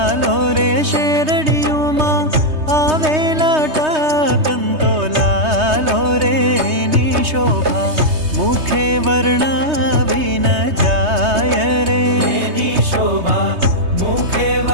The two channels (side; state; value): left; late; 3.2 ms